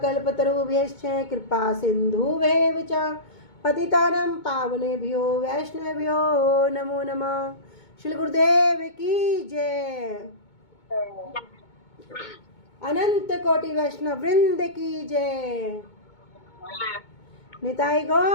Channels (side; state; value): right; late; 2.2 ms